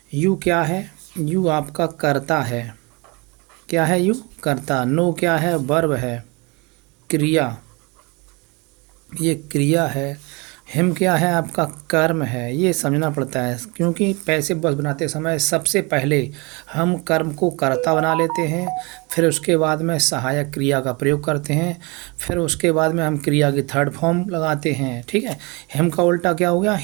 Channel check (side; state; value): left; quieter; 28.0 dB